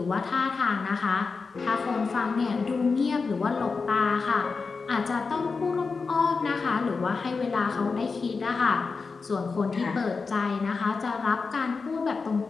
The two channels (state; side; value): quieter; right; 4.6 dB